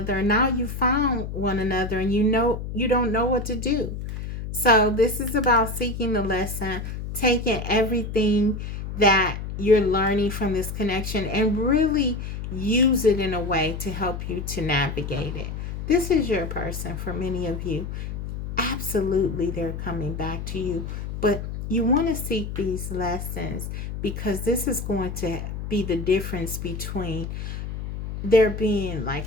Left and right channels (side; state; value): left; noise; hum, 6 dB below the sound